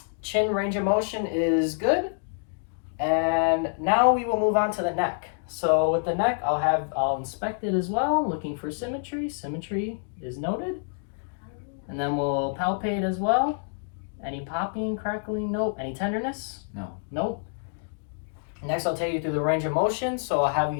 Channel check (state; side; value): silent; right; digital silence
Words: Chin range of motion is good. And now we will move on to the neck. So with the neck, I'll inspect it as well, looking for symmetry. Symmetry is noted. And then we'll palpate as well. Any popping, crackling? Nope. Any tenderness? No. Nope. Next, I'll take you through the range of motion. So I'll have you